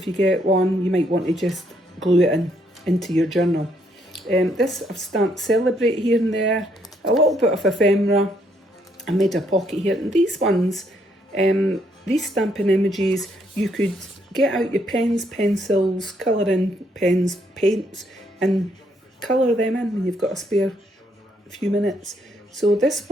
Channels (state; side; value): normal; both; correlation 0.72